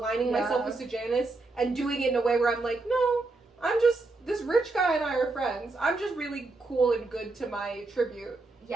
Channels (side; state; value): left; quieter; 3.4 dB